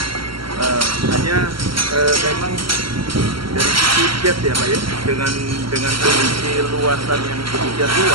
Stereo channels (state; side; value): late; left; 0.74 ms